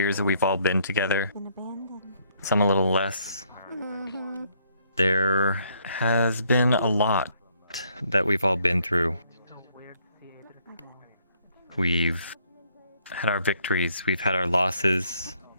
that we've all been together. Some a little less, There has been a lot that we've all been through. We've had our victories, we've had our losses.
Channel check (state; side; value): inverted; both; correlation -0.68